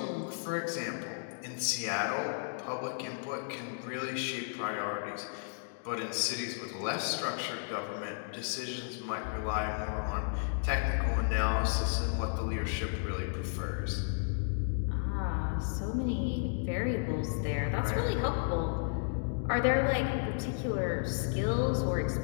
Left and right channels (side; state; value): right; silent; digital silence